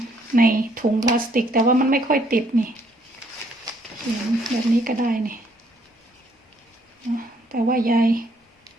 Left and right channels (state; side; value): normal; both; correlation 0.68